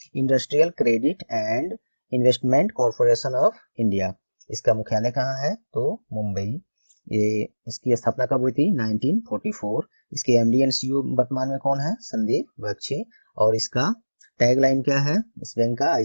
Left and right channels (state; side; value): inverted; both; correlation -1.00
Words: industrial credit and investment corporation of India. इसका मुख्यालय कहाँ है, तो मुंबई। ये इसकी स्थापना कब हुई थी, 1944। इसके एमडी एंड सीईओ वर्तमान में कौन है, संदीप बख्शी। और इसका टैगलाइन क्या है इस बैंक का,